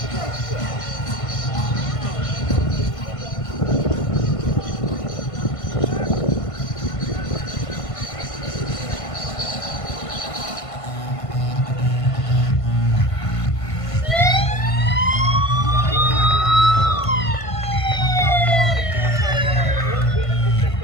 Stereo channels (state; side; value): late; right; 1.5 ms